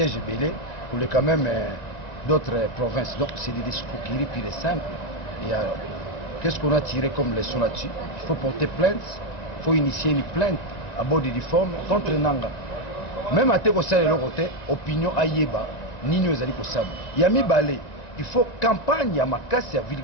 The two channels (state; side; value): late; right; 1.9 ms